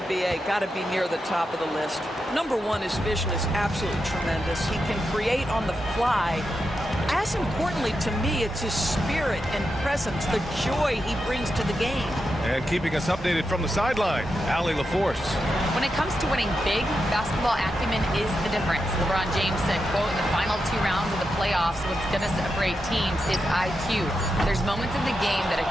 B.A., got to be near the top of the list. Number one, his vision is absolutely tremendous. He can create on the fly. As importantly to me, it's his spirit and presence, the joy he brings to the game. And keeping us updated from the sideline, Allie LaForce. When it comes to winning big, basketball acumen is the difference. LeBron James said, quote, in the final 2 rounds of the playoffs, what's going to separate teams is IQ. There's moments in the game that a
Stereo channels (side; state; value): both; normal; correlation 0.87